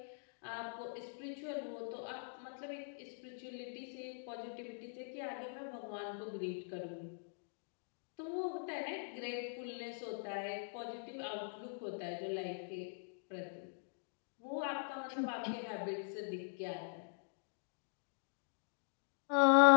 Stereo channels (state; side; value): silent; right; digital silence